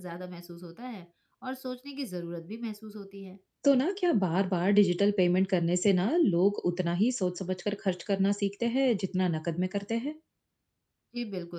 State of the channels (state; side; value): identical; both; correlation 1.00